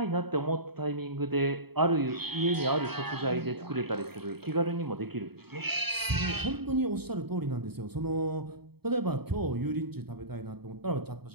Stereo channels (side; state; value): left; late; 0.97 ms